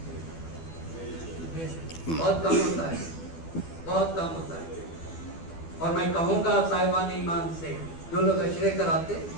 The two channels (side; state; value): right; late; 12 ms